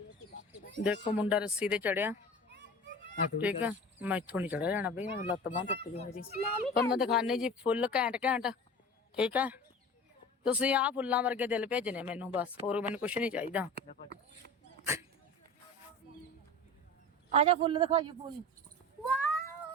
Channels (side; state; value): both; normal; correlation 0.35